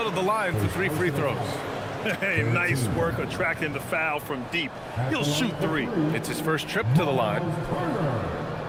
to the line for 3 free throws. Hey, nice work attracting the foul from deep. He'll shoot 3. It's his first trip to the line.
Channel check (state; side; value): identical; both; correlation 1.00